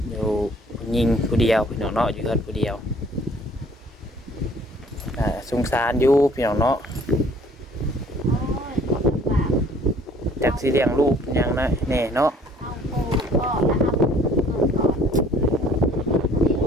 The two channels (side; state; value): both; normal; correlation 0.56